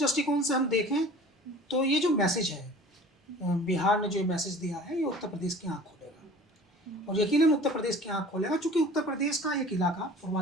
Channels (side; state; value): both; normal; correlation 0.44